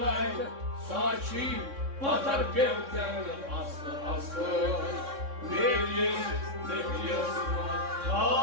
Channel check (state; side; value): late; left; 3.6 ms